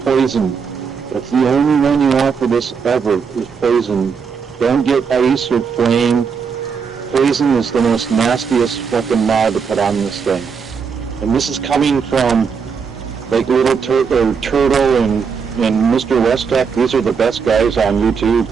poison. That's the only one you want for this ever, is poison. Don't get ice or flame. Poison is the most nastiest fucking mod to put on this thing. And this is coming from, like, Little Turtle and Mr. Westek. These are the best guys on YouTube.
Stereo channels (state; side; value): quieter; left; 6.0 dB